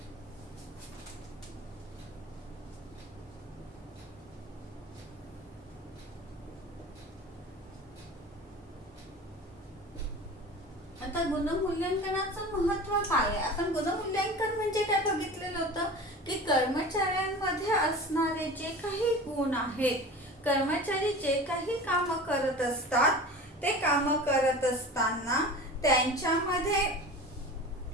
आता गुणमूल्यांकनाचं महत्त्व काय आहे. आपण गुणमूल्यांकन म्हणजे काय बघितलेलं होतं की कर्मचाऱ्यांमध्ये असणारे जे काही गुण आहेत, कर्मचारी जे काही काम करत असतात ते काम करत असताना त्यांच्यामध्ये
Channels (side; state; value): both; normal; correlation 0.35